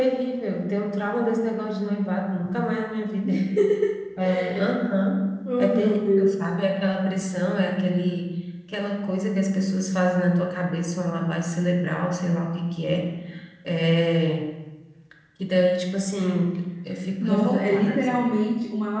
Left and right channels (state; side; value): identical; both; correlation 1.00